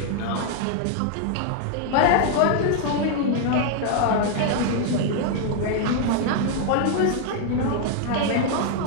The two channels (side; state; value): both; different; correlation 0.00